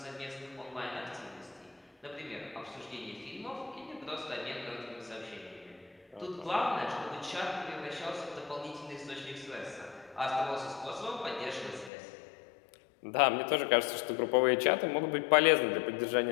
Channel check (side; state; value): right; drops out; at 11.9 s